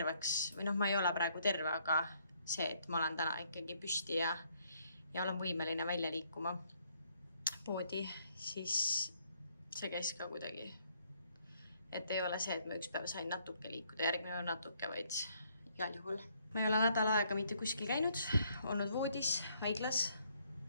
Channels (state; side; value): inverted; both; correlation -0.69